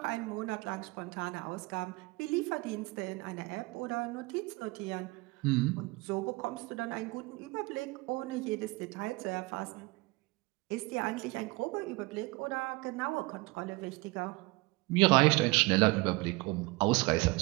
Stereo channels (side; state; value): left; quieter; 23.9 dB